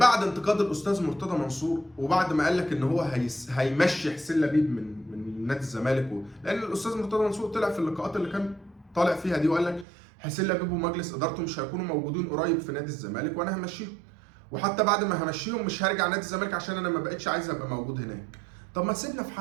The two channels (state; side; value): drops out; left; at 9.9 s